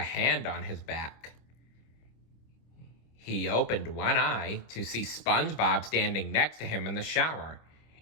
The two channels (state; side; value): late; right; 25 ms